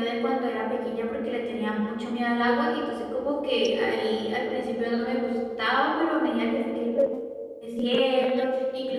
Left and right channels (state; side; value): identical; both; correlation 1.00